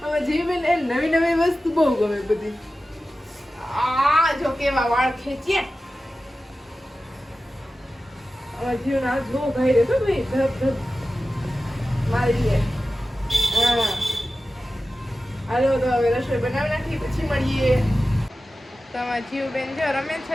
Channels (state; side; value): normal; both; correlation 0.94